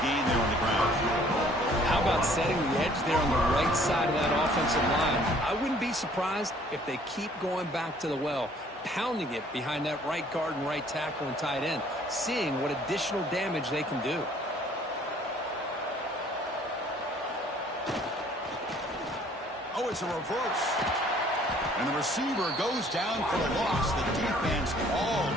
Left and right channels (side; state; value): both; normal; correlation 0.58